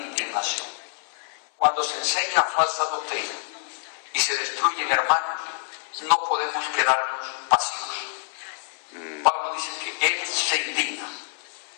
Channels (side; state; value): right; silent; 61 dB below the other